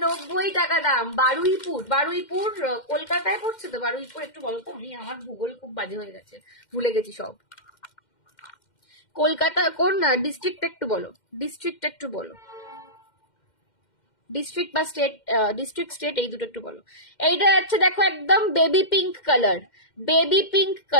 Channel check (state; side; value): late; right; 2.1 ms